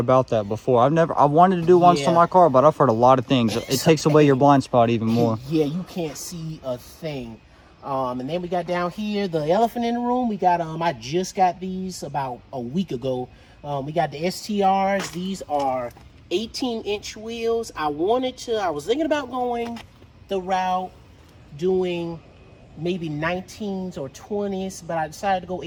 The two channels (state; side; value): identical; both; correlation 1.00